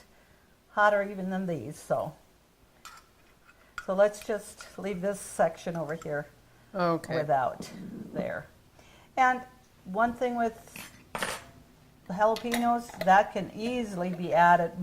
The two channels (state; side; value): identical; both; correlation 1.00